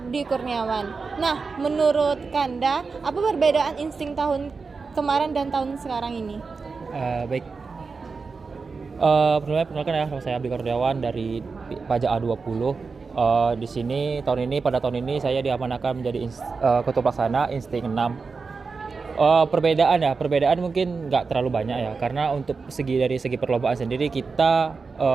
Kurniawan. Nah, menurut Kanda, apa perbedaan Insting tahun kemarin dan tahun sekarang ini? Baik. Perkenalkan ya, nama saya Abdi Kurniawan dari Pajak A20. Di sini pada tahun ini saya diamanahkan menjadi Ketua Pelaksana Insting 6. Perbedaan mungkin nggak terlalu banyak ya, karena untuk dari segi perlombaan sendiri kita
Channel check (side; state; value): left; quieter; 4.6 dB